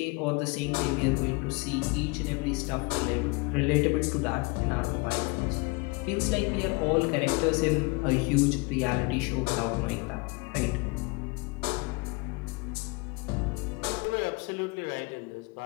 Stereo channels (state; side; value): quieter; right; 27.7 dB